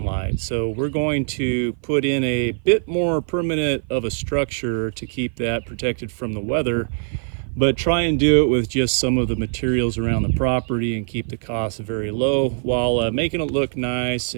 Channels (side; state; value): left; silent; 56 dB below the other